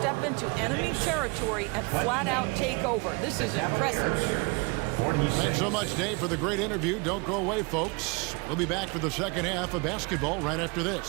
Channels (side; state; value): left; quieter; 29.1 dB